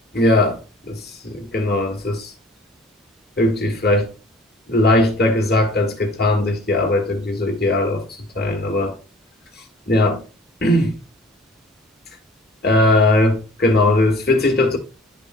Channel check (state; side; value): normal; both; correlation 0.49